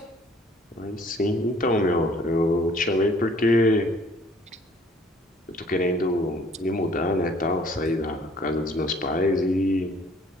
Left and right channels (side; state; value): both; normal; correlation 0.57